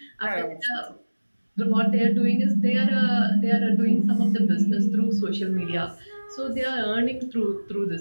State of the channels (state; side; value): inverted; both; correlation -1.00